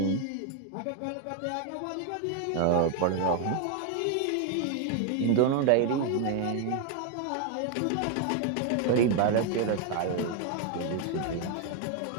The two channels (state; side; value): different; both; correlation 0.01